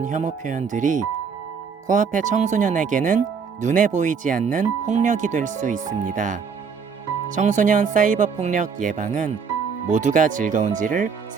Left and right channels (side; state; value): left; quieter; 5.9 dB